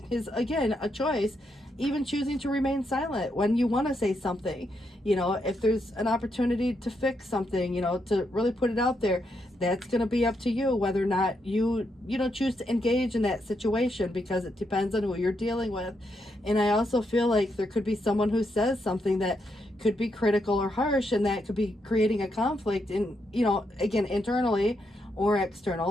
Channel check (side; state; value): both; normal; correlation 0.80